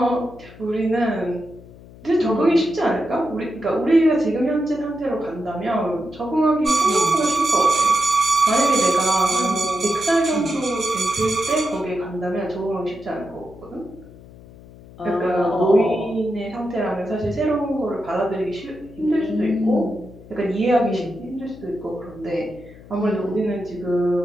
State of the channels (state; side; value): noise; left; hum, 20 dB below the sound